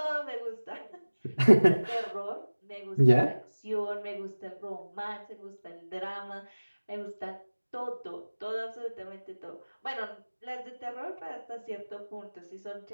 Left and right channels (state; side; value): inverted; both; correlation -1.00